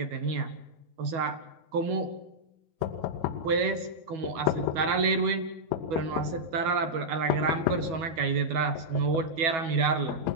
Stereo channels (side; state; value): left; late; 12 ms